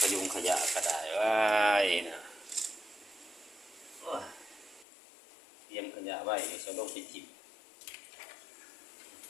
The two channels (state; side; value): drops out; right; at 4.9 s